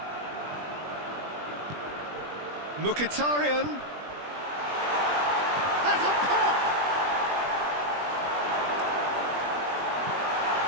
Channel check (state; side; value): late; left; 20 ms